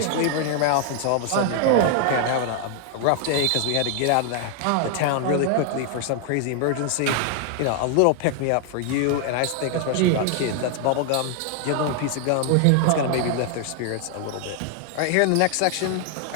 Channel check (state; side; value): different; both; correlation 0.00